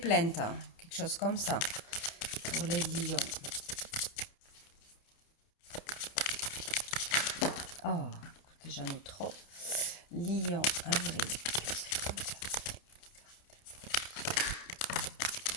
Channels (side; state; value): right; late; 30 ms